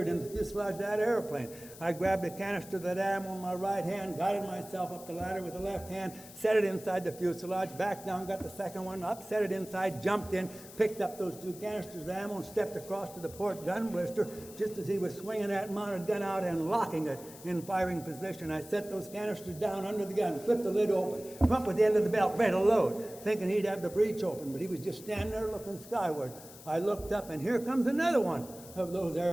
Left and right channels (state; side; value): noise; left; hiss, 17 dB below the sound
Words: into the fuselage of that airplane. I grabbed a canister of that ammo in my right hand, guided myself up the ladder with the left hand, set it inside the fuselage, back down, got the second one up, set it inside, jumped in, picked up those 2 canisters of ammo and stepped across to the port gun blister just as he was swinging that mounted gun out and locking it in firing position. I set those canisters down under the gun, flipped the lid open, come up with the end of the belt, ready to load, thinking he'd have the breech open, but he was just standing there looking skyward. I looked up, and here comes another one of those